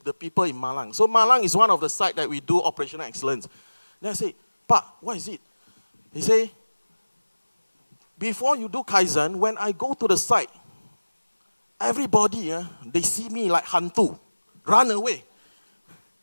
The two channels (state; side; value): inverted; both; correlation -1.00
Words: the people in Malang? So Malang is one of the sites that we do operational excellence. Then I say, Pa, what is it? He say, before you do Kaizen, when I go to the site, everybody, they see me like hantu, run away.